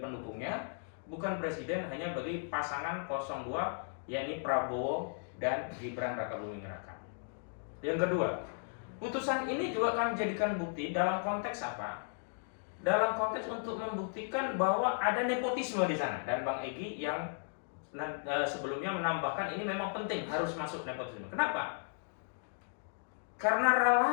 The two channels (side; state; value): right; silent; digital silence